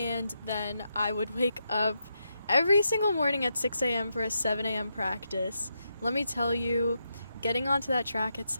then I would wake up every single morning at 6 a.m. for a 7 a.m. practice. Let me tell you, getting onto that track at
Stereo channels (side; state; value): both; inverted; correlation -0.84